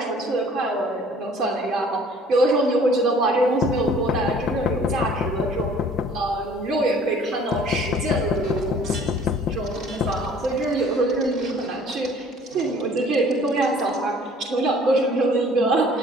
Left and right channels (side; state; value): both; normal; correlation 0.53